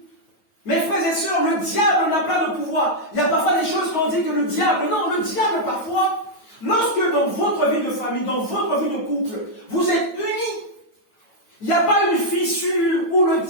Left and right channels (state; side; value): late; right; 9.1 ms